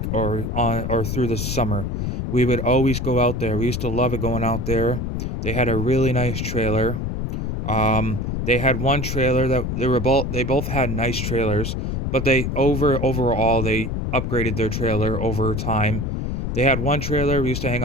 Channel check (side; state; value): left; noise; rumble, 2 dB below the sound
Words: or through the summer, we would always go out there. We used to love it going out there. They had a really nice trailer. They had one trailer that they both had nice trailers, but overall they upgraded their trailer over time. They had one trailer, we used to hang